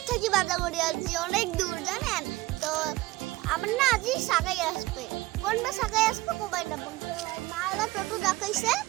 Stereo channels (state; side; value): quieter; left; 19.4 dB